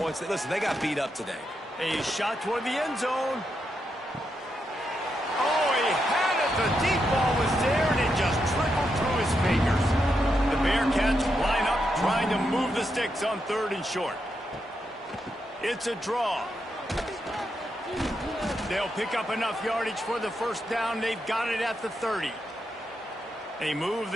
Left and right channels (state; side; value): normal; both; correlation 0.83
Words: Listen, they got beat up today. A shot toward the end zone. Oh, he had it. The deep ball was there, and it just trickled through his fingers. The Bearcats line up, trying to move the sticks on 3rd and short. It's a draw. They'll pick up enough yardage for the 1st down. They've got it at the 30. They moved